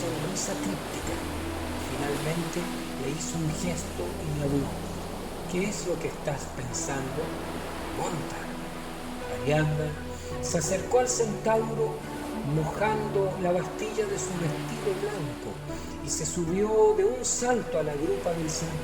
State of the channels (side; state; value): both; identical; correlation 1.00